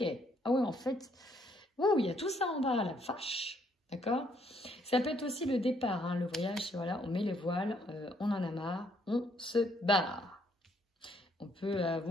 Ah ouais, en fait, waouh, il y a tout ça en bas, la vache. D'accord? Ça peut être aussi le départ, hein, le voyage, voilà, on met les voiles, on en a marre, on se barre. On peut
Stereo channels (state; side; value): normal; both; correlation 0.69